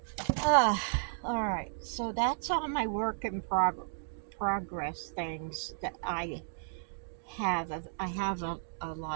Alright. So that's all my work in progress things that I have. I have a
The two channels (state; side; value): silent; left; digital silence